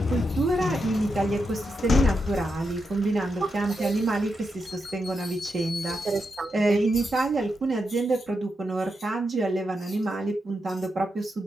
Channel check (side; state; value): both; normal; correlation 0.85